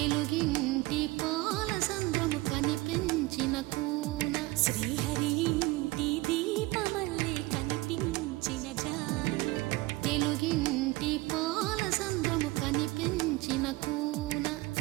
పాలసంద్రము కనిపించిన కూన శ్రీహరి ఇంటి దీపమల్లే కనిపించిన జాన తెలుగింటి పాలసంద్రము కనిపించిన కూన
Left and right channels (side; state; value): left; quieter; 21.1 dB